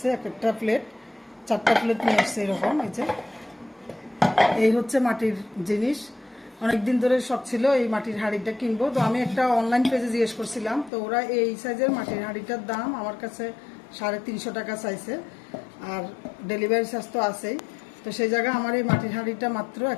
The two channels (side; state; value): right; drops out; at 10.9 s